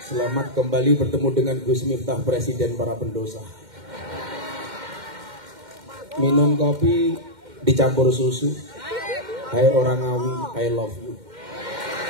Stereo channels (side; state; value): left; late; 2.1 ms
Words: kembali bertemu dengan Gus Miftah, Presiden para pendosa. Minum kopi dicampur susu. Hai orang Ngawi, I love you.